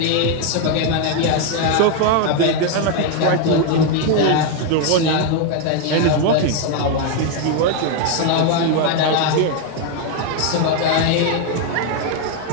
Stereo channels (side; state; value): both; different; correlation 0.01